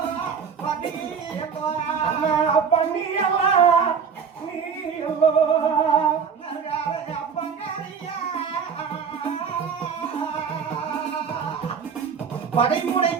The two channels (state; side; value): quieter; left; 6.5 dB